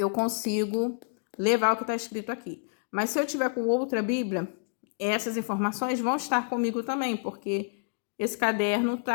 consigo levar o que está escrito aqui. Mas se eu tiver com outra Bíblia, essas informações vão estar comigo também, porque esse caderno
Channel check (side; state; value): right; silent; digital silence